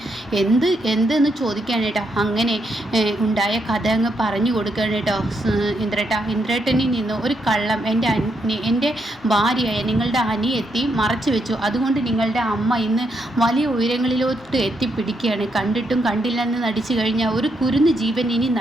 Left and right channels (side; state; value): both; normal; correlation 0.79